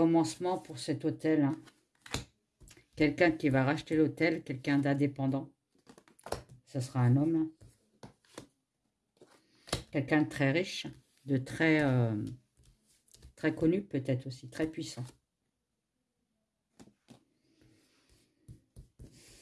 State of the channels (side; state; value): both; identical; correlation 1.00